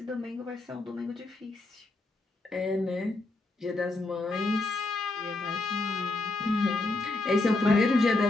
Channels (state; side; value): quieter; right; 3.0 dB